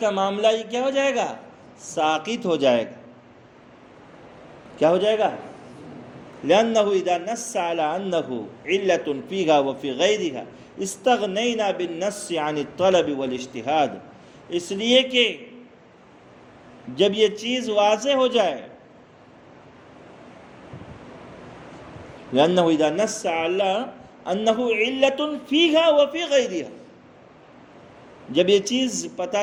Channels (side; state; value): both; identical; correlation 1.00